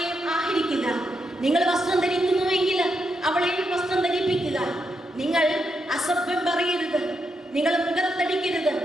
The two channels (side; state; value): both; normal; correlation 0.82